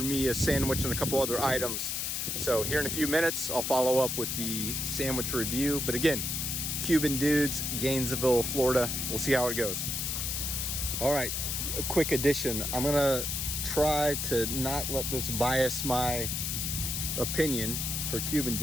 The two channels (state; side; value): noise; left; hiss, 1 dB below the sound